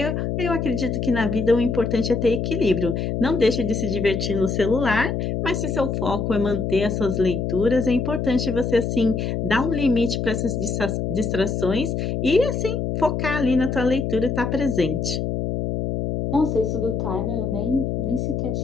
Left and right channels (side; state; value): left; noise; hum, 1 dB below the sound